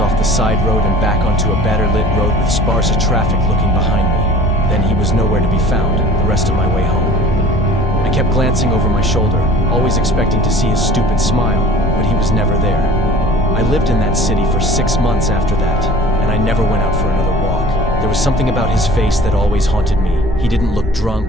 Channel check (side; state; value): both; normal; correlation 0.44